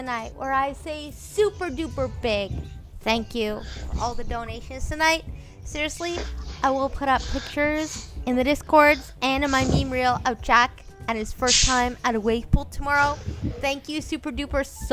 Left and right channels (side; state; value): both; identical; correlation 1.00